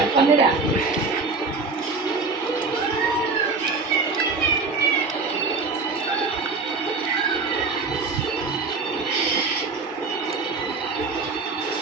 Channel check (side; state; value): left; quieter; 4.2 dB